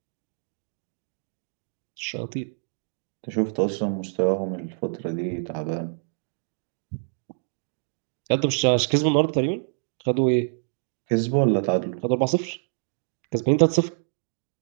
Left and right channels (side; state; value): left; silent; digital silence